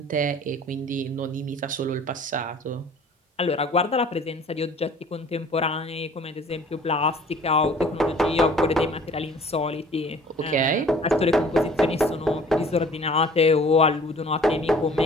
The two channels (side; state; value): both; normal; correlation 0.50